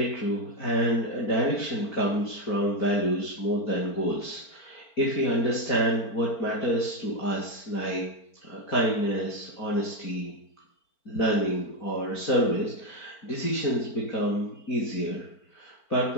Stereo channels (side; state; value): right; late; 4.5 ms